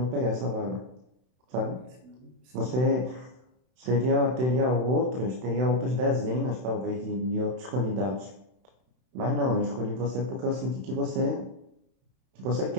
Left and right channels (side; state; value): left; late; 32 ms